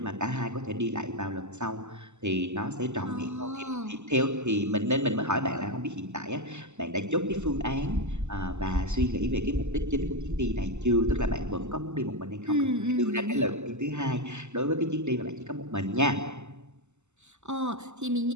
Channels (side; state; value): left; late; 0.83 ms